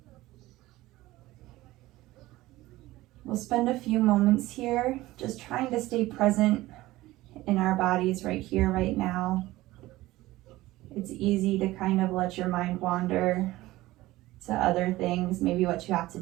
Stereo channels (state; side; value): quieter; left; 17.6 dB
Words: We'll spend a few moments here just trying to stay present in our bodies right here, right now. It's easy to kind of let your mind wander to other things, maybe what you have to